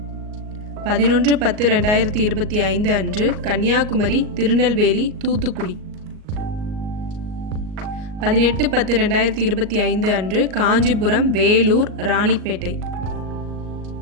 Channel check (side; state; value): left; late; 38 ms